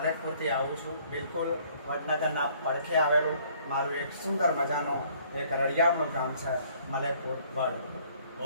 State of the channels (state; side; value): inverted; both; correlation -0.60